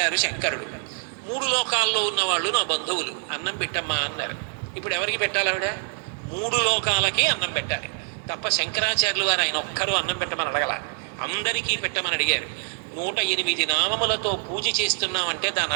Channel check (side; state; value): left; silent; 62 dB below the other